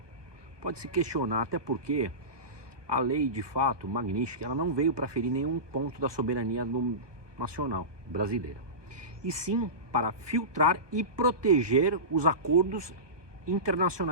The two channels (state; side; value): late; left; 1.2 ms